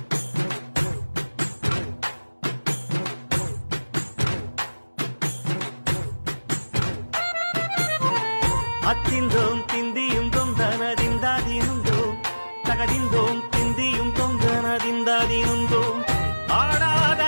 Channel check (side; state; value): both; inverted; correlation -1.00